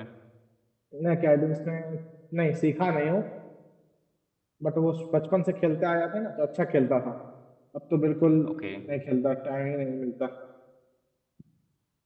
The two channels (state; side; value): identical; both; correlation 1.00